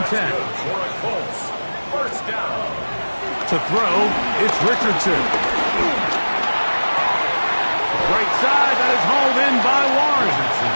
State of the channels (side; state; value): both; inverted; correlation -1.00